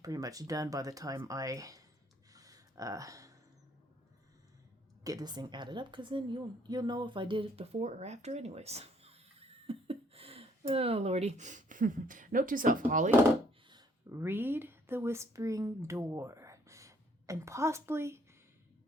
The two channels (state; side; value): normal; both; correlation 0.65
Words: pretty much done by the time I get this thing added up, because then you'll know if I did it before or after anyways. Oh, Lordy. Note to self, Holly. Read the Whispering Door, and possibly,